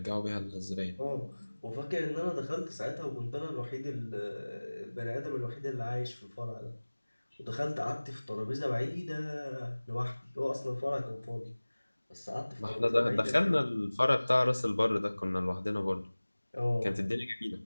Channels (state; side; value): inverted; both; correlation -1.00